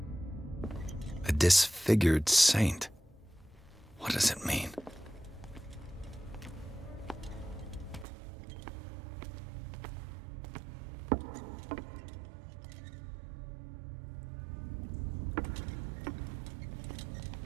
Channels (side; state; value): left; drops out; at 8.1 s